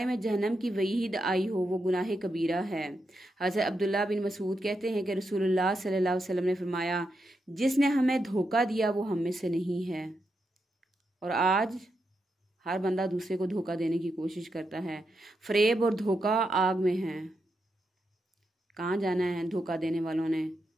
میں جہنم کی وعید آئی ہو وہ گناہ کبیرہ ہے۔ حضرت عبداللہ بن مسعود کہتے ہیں کہ رسول اللہ صلی اللہ علیہ وسلم نے فرمایا جس نے ہمیں دھوکہ دیا وہ ہم میں سے نہیں ہے۔ اور آج ہر بندہ دوسرے کو دھوکہ دینے کی کوشش کرتا ہے۔ فریب اور دھوکہ آگ میں ہے۔ کہاں جانا ہے دھوکہ دینے والوں نے؟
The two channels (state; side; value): normal; both; correlation 0.84